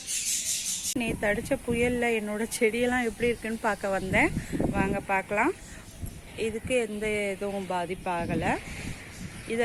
நேற்று அடித்த புயலில் என்னோடய செடியெல்லாம் எப்படி இருக்குன்னு பார்க்க வந்தேன். வாங்க பார்க்கலாம். இதுக்கு எந்த எதுவும் பாதிப்பாகலை.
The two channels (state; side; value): identical; both; correlation 1.00